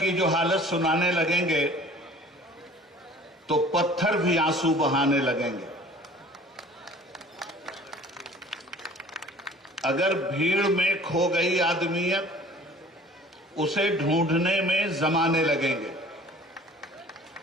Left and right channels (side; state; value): both; normal; correlation 0.48